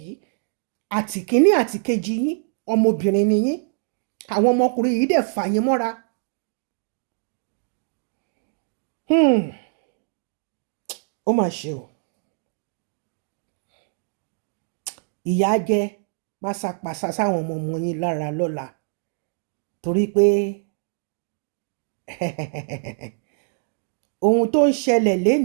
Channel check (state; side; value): silent; left; 63 dB below the other